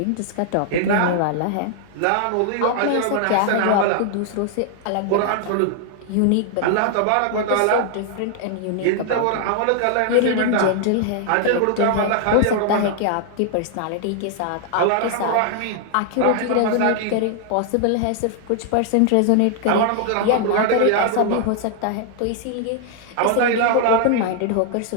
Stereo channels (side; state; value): both; different; correlation 0.00